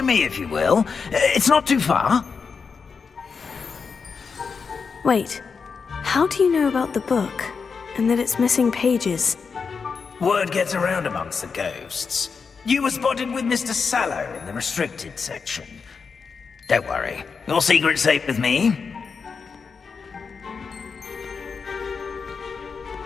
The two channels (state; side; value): quieter; right; 5.4 dB